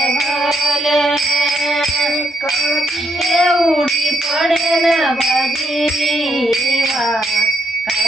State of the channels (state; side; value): normal; both; correlation 0.77